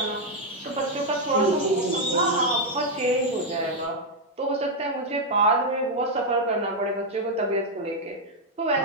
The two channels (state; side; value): normal; both; correlation 0.00